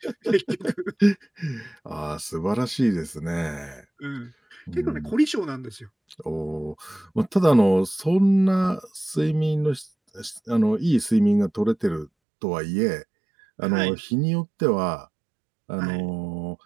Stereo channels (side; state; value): left; drops out; at 12.1 s